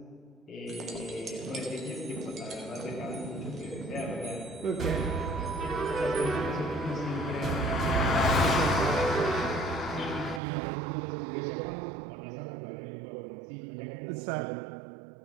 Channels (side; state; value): left; drops out; at 10.4 s